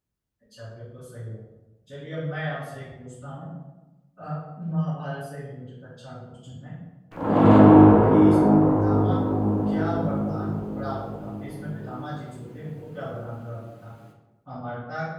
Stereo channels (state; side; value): identical; both; correlation 1.00